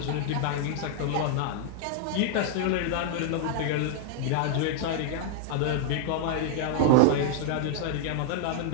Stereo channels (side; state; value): both; different; correlation 0.00